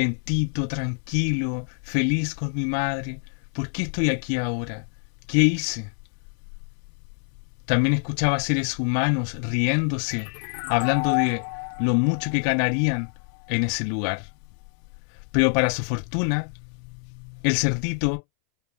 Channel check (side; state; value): right; silent; 61 dB below the other